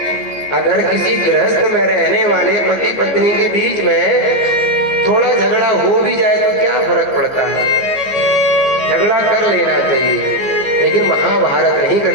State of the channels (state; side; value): late; right; 14 ms